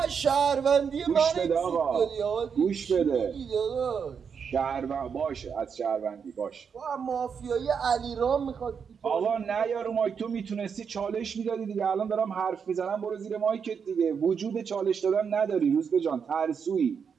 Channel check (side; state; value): left; quieter; 6.6 dB